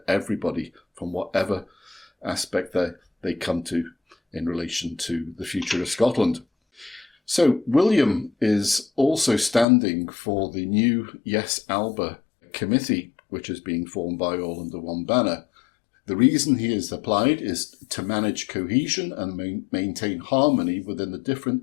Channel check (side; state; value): right; drops out; at 9.7 s